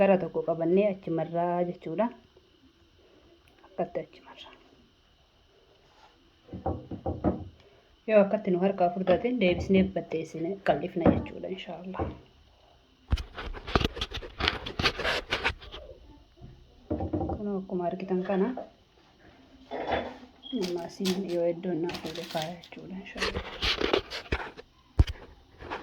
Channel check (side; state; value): both; identical; correlation 1.00